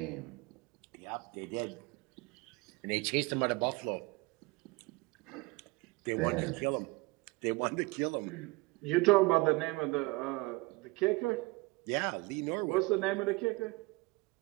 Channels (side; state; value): left; quieter; 25.0 dB